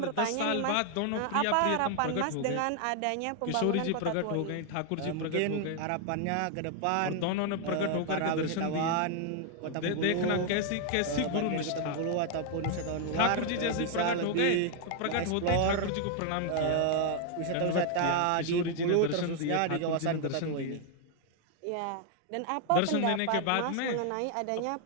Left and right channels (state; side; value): different; both; correlation 0.00